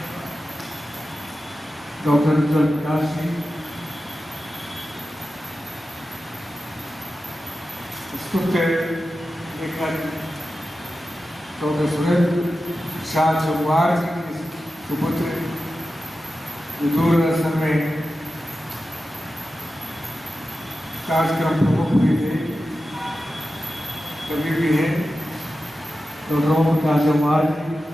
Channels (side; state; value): both; normal; correlation 0.92